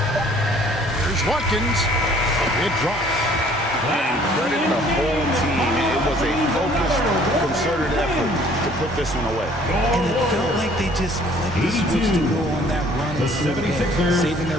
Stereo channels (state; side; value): normal; both; correlation 0.57